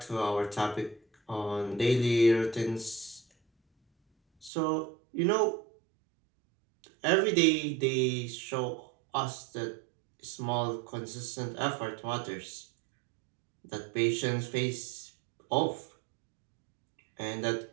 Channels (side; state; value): left; drops out; at 4.5 s